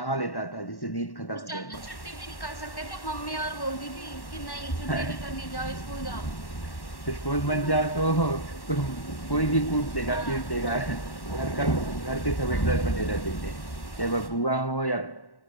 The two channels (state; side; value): late; right; 1.1 ms